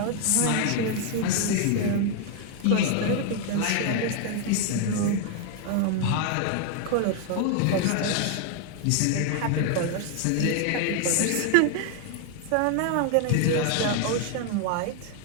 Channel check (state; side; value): different; both; correlation 0.00